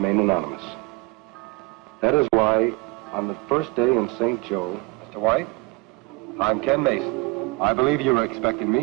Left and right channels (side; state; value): left; quieter; 24.3 dB